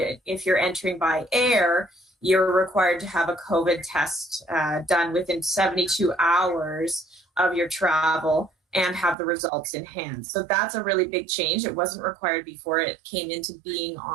you're entering by air, you're required to have a COVID test done within 72 hours of your travel and have the results in hand. So that's a really big change. It wasn't required before. It came into being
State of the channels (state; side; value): drops out; left; at 9.2 s